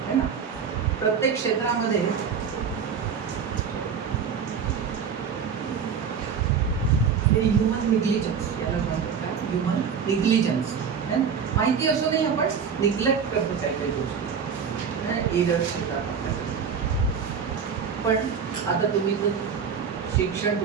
है ना. प्रत्येक क्षेत्रामध्ये हे ह्युमन निग्लिजन्स याला म्हणतात. काय ह्युमन निग्लिजन्स, माहिती असूनही आपण निग्लेक्ट करतो काही काही गोष्टी, एरर्स येतात आपल्याकडे. पण आता तुम्ही जर शिक्षण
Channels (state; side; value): quieter; left; 6.7 dB